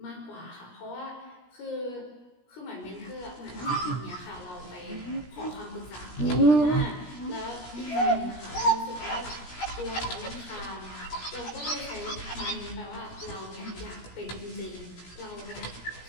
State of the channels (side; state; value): right; late; 17 ms